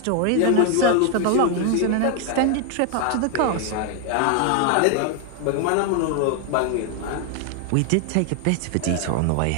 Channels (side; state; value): both; different; correlation 0.00